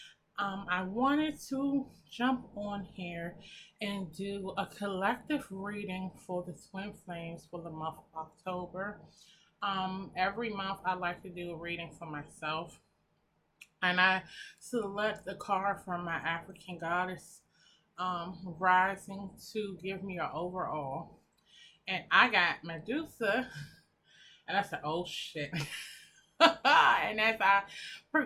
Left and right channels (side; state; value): both; identical; correlation 1.00